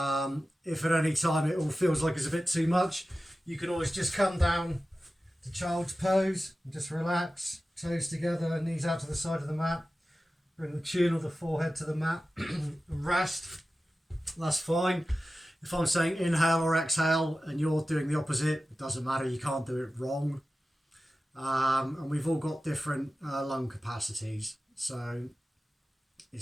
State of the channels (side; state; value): both; normal; correlation 0.95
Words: If at any time it all feels like it's a bit too much, you can always just come down to child's pose and just relax, toes together, knees out to the side of the mat. Bring the chin or the forehead to the mat and rest. That's fine. If I'm saying inhale or exhale and you're doing the opposite, it doesn't matter, you can't do it wrong. And we've all got different lung capacities, so